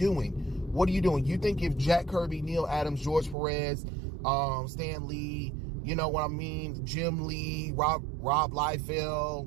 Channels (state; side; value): drops out; left; at 3.4 s